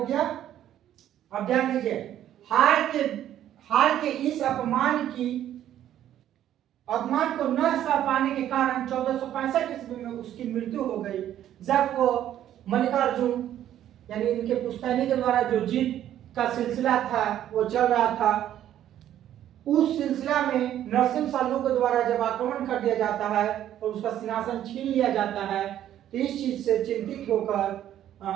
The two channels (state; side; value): quieter; left; 11.5 dB